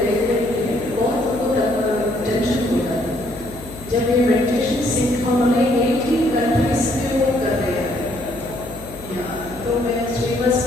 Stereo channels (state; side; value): noise; left; hum, 16 dB below the sound